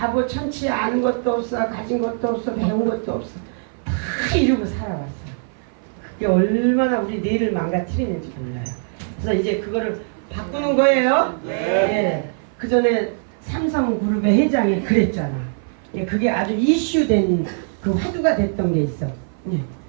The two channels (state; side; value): silent; left; 56 dB below the other